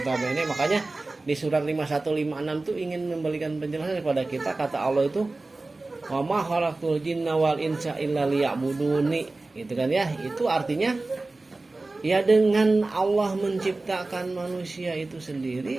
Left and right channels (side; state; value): left; quieter; 3.2 dB